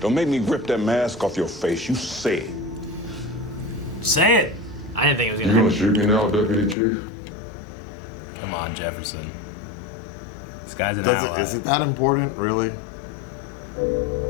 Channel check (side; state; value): right; drops out; at 6.8 s